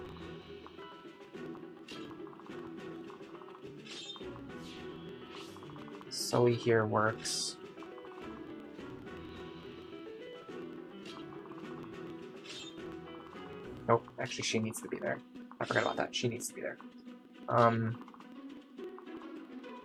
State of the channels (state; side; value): identical; both; correlation 1.00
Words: Sully here works. Nope, actually she needs to be there. I forgot about that. She needs to be there.